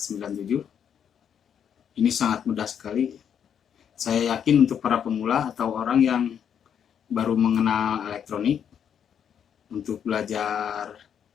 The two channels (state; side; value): quieter; right; 8.4 dB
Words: Ini sangat mudah sekali. Saya yakin untuk para pemula atau orang yang baru mengenal elektronik, untuk belajar